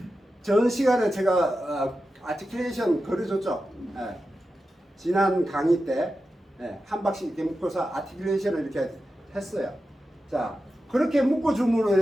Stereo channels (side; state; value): both; normal; correlation 0.91